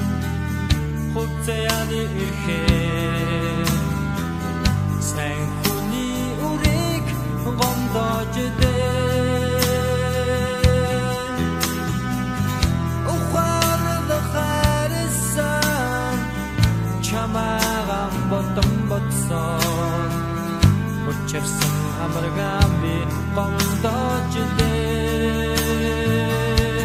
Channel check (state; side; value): identical; both; correlation 1.00